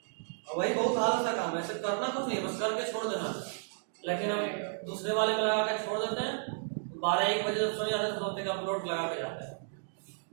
और वही बहुत आलस का काम है, ऐसे करना कुछ नहीं, बस करके छोड़ देना। लेकिन हम दूसरे वाले पे लगा के छोड़ देते हैं, 12-1 बजे जब सोने जाते हैं तो सोचते हैं कि अपलोड लगा के जाते हैं,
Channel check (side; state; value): left; silent; digital silence